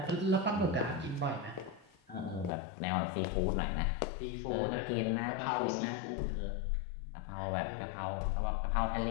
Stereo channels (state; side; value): drops out; right; at 2.5 s